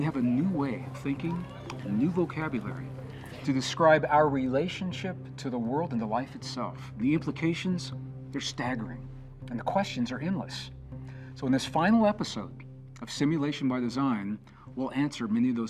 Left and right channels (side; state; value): both; identical; correlation 1.00